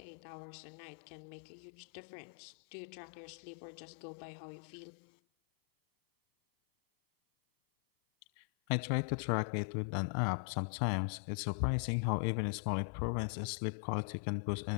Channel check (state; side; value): silent; right; 51 dB below the other